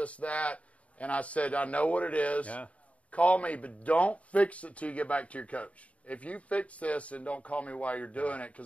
that. And I said, I know what it is. Yeah. Call me, but don't fix it till you get back to your coach. If you fix this, and don't call me while you're doing it,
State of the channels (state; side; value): late; right; 0.066 ms